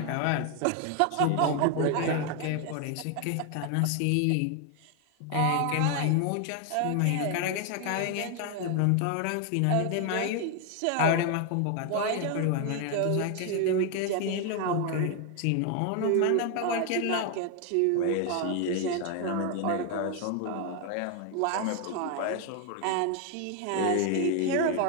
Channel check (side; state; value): both; different; correlation 0.01